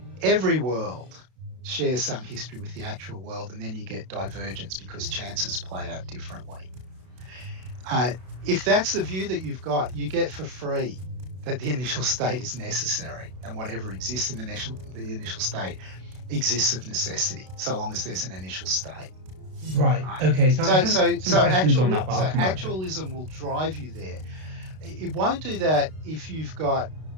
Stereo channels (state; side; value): late; left; 32 ms